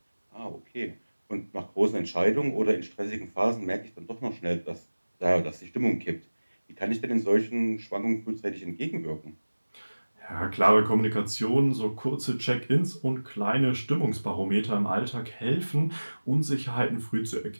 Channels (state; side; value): inverted; both; correlation -1.00